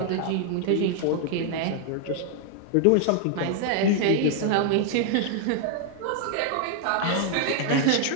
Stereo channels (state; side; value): different; both; correlation 0.00